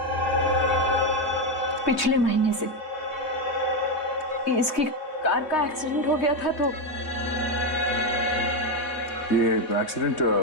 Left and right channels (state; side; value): late; right; 3.2 ms